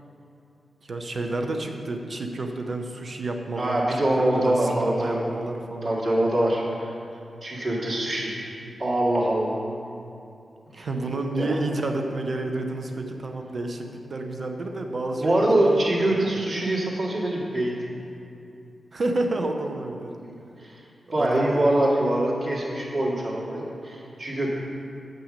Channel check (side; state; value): both; normal; correlation 0.92